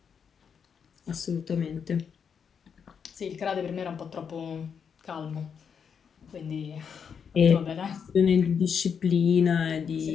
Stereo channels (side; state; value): right; quieter; 6.9 dB